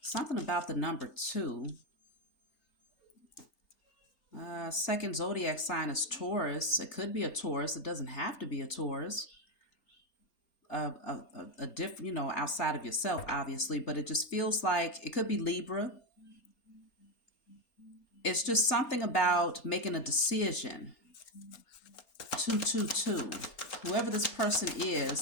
Something about the number 2. Second zodiac sign is Taurus. It could be a Taurus. It doesn't have to be a Taurus. A different, outside of yourself, obviously, but it just feels like it could be Libra. It's just something about making a decision. 222. Whoever this person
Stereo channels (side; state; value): right; late; 4.3 ms